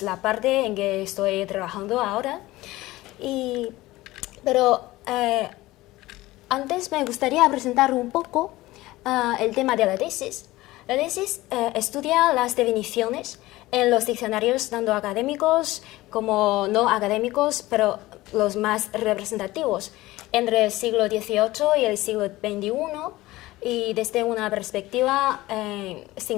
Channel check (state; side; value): quieter; right; 18.3 dB